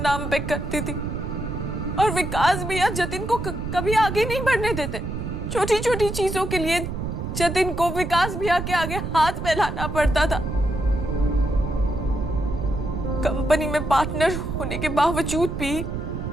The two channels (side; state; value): right; noise; rumble, 5 dB below the sound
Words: पे करती थी, और विकास भैया जतिन को कभी आगे नहीं बढ़ने देते। छोटी छोटी चीजों के लिए जतिन को विकास भैया के आगे हाथ फैलाना पड़ता था। कंपनी में पार्टनर होने के बावजूद भी